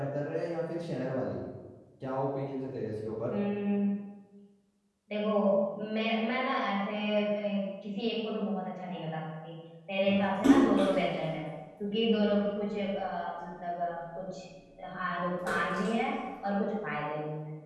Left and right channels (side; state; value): both; identical; correlation 1.00